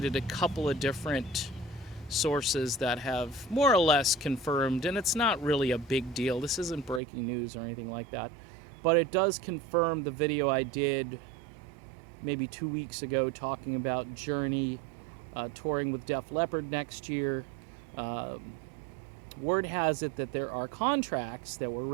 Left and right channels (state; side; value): drops out; left; at 7.0 s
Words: a couple of different sources that have more or less confirmed, and it's not really a big deal. This isn't breaking news or anything like that, but it does confirm the video I did maybe 2 weeks ago talking about Journey touring with Def Leppard next year. Word has it that there are contracts that were